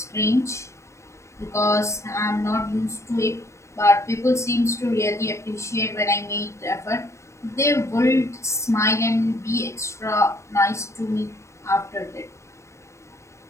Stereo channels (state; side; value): late; right; 0.14 ms